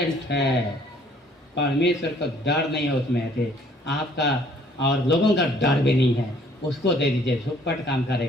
है, परमेश्वर को डर नहीं है उसमें थे, आपका और लोगों का डर भी नहीं है, उसको दे दीजिए, झुकपट काम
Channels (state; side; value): normal; both; correlation 0.60